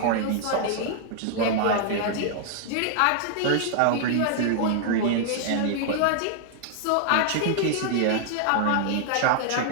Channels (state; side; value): different; both; correlation -0.01